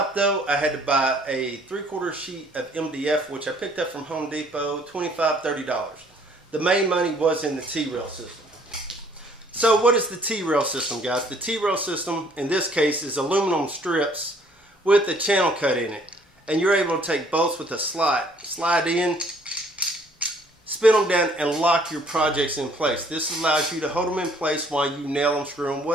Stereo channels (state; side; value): normal; both; correlation 0.60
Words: though, I had to buy a 3/4 sheet of MDF, which I picked up from Home Depot, $25, $30. The main money was in the T-rail system. So what is the T-rail system, guys? The T-rail system, in this case, is aluminum strips with a channel cut in it. And you're able to take bolts with a slide in, spin them down, and lock your projects in place. This allows you to hold them in place while you nail them, screw them,